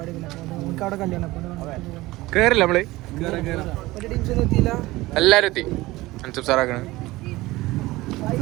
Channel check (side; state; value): left; quieter; 19.2 dB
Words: നമുക്ക് അവിടെ കല്യാണം. കേറില്ല നമ്മള് ടീംസൊന്നും എത്തിയില്ല. എല്ലാരും എത്തി. അൻസബ് സാറാക്കണ